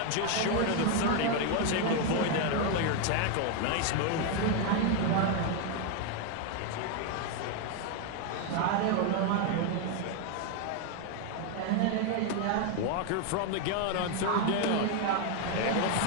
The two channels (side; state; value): both; different; correlation 0.01